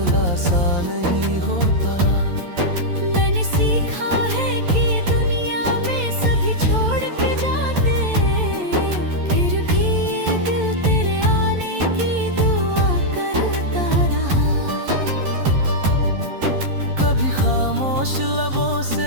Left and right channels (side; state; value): left; late; 11 ms